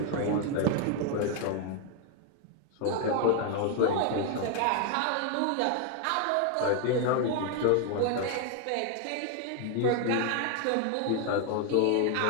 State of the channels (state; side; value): different; both; correlation 0.01